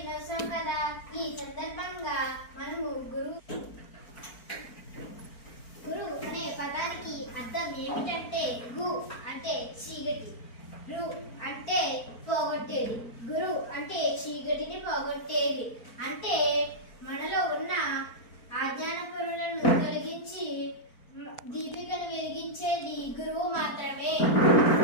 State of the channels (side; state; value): right; late; 4.4 ms